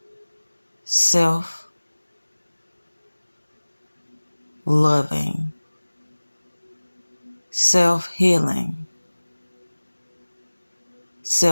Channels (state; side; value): inverted; both; correlation -1.00